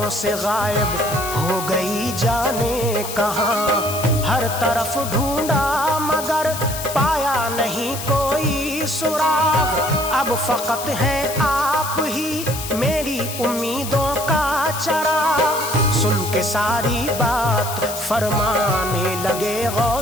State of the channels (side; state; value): left; noise; hiss, 8 dB below the sound